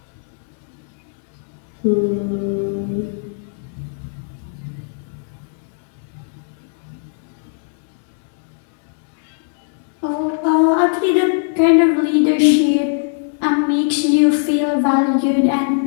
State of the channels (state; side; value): silent; right; digital silence